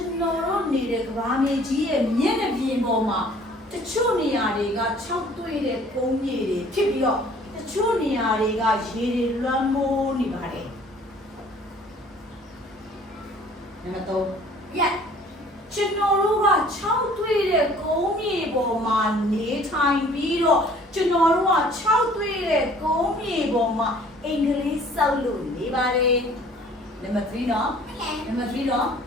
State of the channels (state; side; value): normal; both; correlation 0.54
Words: န်တော်တို့နေတဲ့ကဘာမြေကြီးရဲ့မျက်နှာပြင်ပေါ်မှာတချို့နေရာတွေက6တွေ့တဲ့ကုန်းမြေတွေဖြစ်ပြီးတော့တချို့နေရာတွေကရေတွေလွှမ်းမိုးနေပါတယ်နံပါတ်3ရက်ကျွန်တော်တို့က6တွေ့တဲ့ကုန်းမြေပေါ်မှာနေထိုင်ပြီးတော့ကျွန်တော်တို့က6တွေ့တဲ့ကုန်းမြေပေါ်မှာအင်္ဂလိပ်စောက်လို့နေပါတယ်နံပါတ်3နော်နံပါတ်3နော်